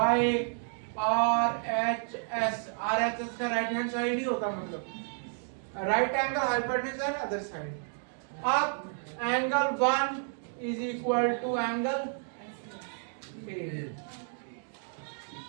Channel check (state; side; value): silent; left; 57 dB below the other